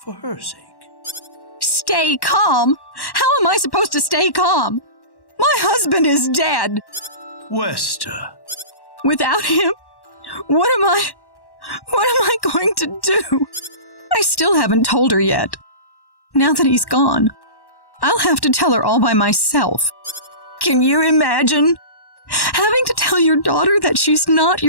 for her sake. Stay calm? How am I supposed to stay calm? My husband is dead. Wester. Without him, what am I going to do? I still haven't told her yet. Now that he's gone, I'll have to tell her all by myself. Can you imagine having to tell your daughter that she's not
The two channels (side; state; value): right; late; 1.1 ms